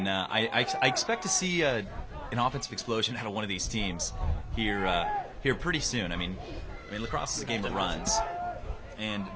I expect to see an offensive explosion out of one of these teams here pretty soon. I mean, lacrosse is a game of runs, and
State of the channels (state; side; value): identical; both; correlation 1.00